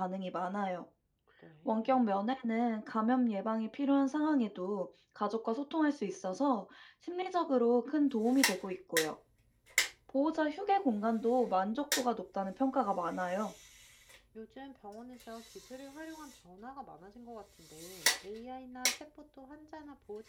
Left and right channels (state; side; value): identical; both; correlation 1.00